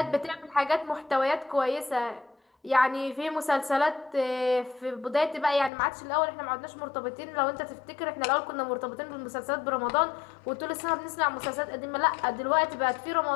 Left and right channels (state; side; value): drops out; right; at 5.7 s